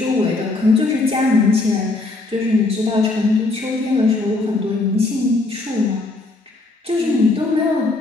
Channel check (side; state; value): right; quieter; 3.2 dB